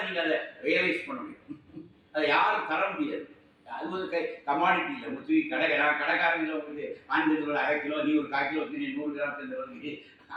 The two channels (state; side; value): identical; both; correlation 1.00